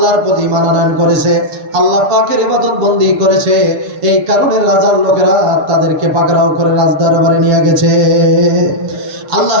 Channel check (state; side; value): late; left; 7.0 ms